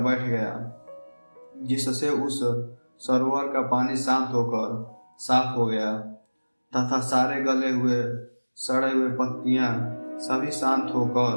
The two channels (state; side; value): inverted; both; correlation -1.00